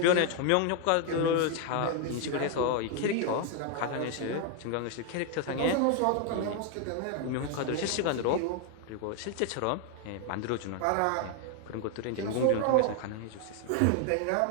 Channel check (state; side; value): different; both; correlation 0.00